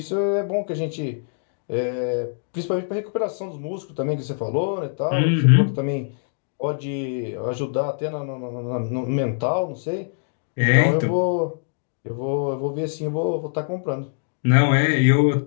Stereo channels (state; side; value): silent; right; digital silence